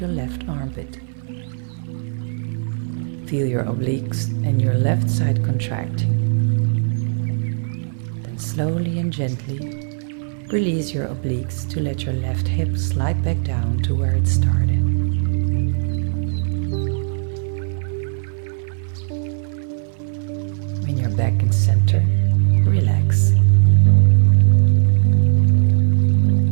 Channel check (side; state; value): left; silent; 58 dB below the other